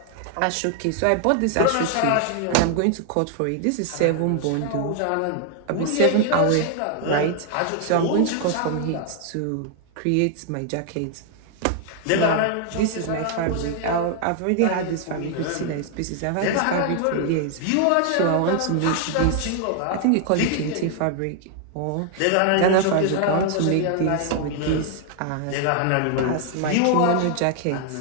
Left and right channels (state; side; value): different; both; correlation 0.00